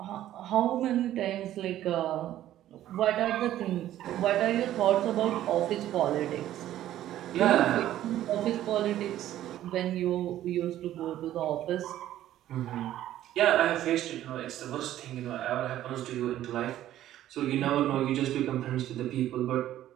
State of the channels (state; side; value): quieter; left; 12.9 dB